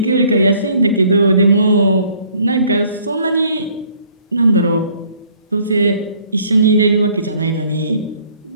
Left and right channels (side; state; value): both; inverted; correlation -0.60